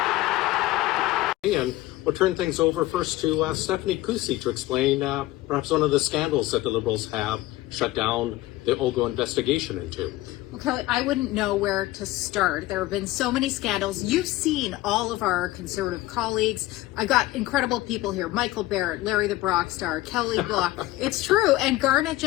And we'll turn things over first to Stephanie Kusi to explain perhaps one of the scandals that the Liberals have shut down the Oggo investigation into. Well, Kelly, I wouldn't know where to start. There have been so many scandals. You've seen all of our Conservative colleagues. I got incredible people here. Michael Barrett, Larry the Brockstar, Kelly Block. It's true. And Garnett,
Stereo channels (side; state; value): right; quieter; 17.4 dB